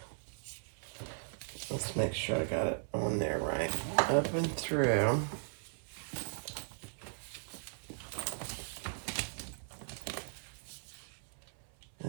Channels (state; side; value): silent; left; 53 dB below the other